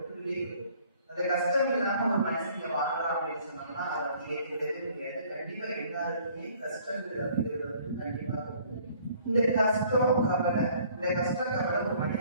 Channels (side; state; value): both; inverted; correlation -0.58